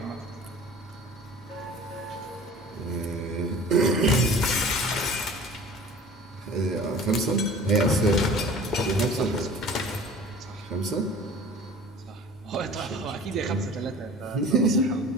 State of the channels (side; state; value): both; normal; correlation 0.43